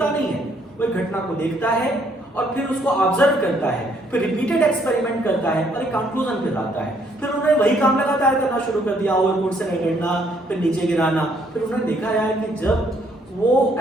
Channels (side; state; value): both; normal; correlation 0.67